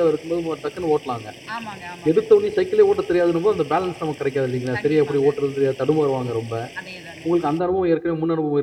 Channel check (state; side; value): identical; both; correlation 1.00